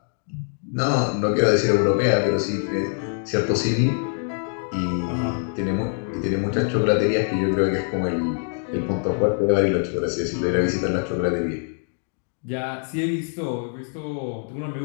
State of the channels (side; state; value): right; silent; 57 dB below the other